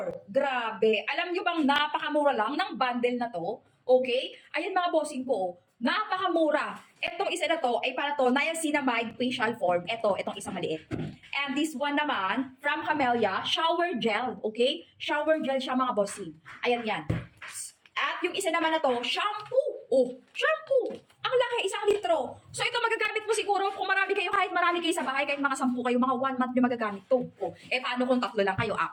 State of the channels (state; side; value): identical; both; correlation 1.00